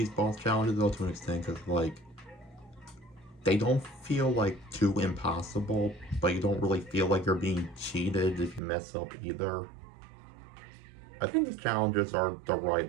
boss challenges though to an extent because like they don't feel like too impossible, but you don't really feel like you're being cheated if you mess up either. I think these challenges are the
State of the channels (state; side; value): drops out; left; at 8.6 s